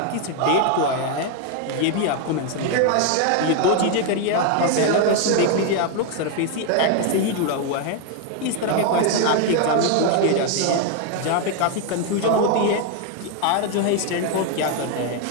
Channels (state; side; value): different; both; correlation 0.01